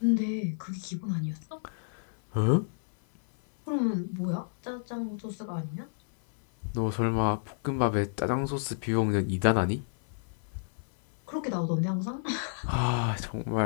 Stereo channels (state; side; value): silent; right; 58 dB below the other